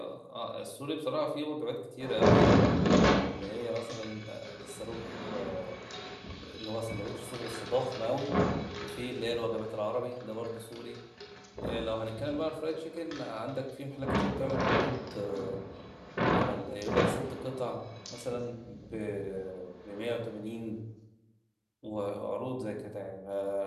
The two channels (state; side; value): identical; both; correlation 1.00